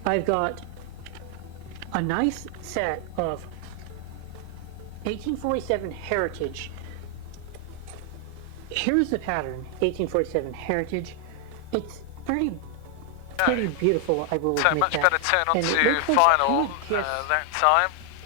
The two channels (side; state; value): both; different; correlation 0.00